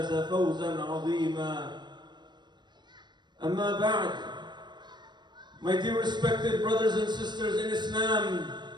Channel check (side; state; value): left; late; 0.21 ms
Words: فوزا عظيما. أما بعد, my dear respected brothers and sisters in Islam,